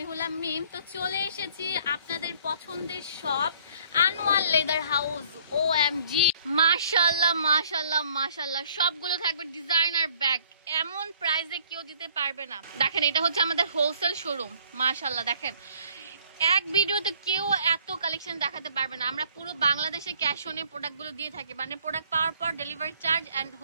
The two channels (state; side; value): inverted; both; correlation -0.59